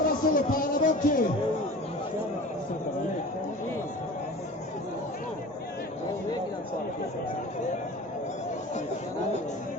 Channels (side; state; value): both; normal; correlation 0.38